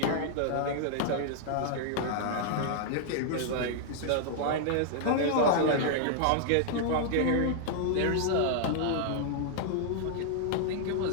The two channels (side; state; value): both; different; correlation -0.01